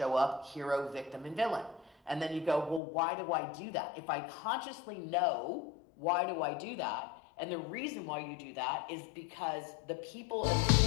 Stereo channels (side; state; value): right; drops out; at 2.8 s